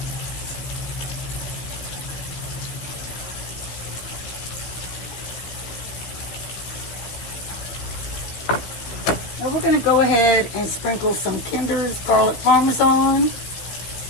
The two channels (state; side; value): late; right; 16 ms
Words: Now we're going to go ahead and sprinkle some Kinder's garlic parmesan.